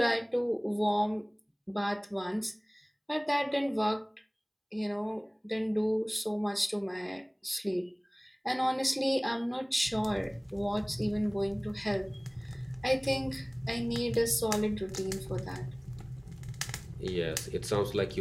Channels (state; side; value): identical; both; correlation 1.00